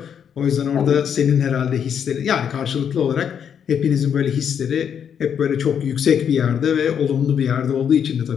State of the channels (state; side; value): quieter; right; 8.1 dB